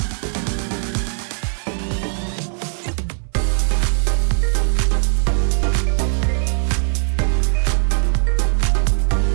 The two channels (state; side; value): silent; left; 64 dB below the other